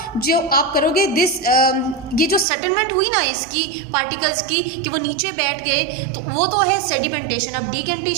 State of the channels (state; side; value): drops out; left; at 2.5 s